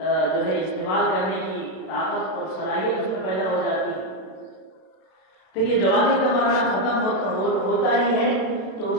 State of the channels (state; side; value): late; right; 32 ms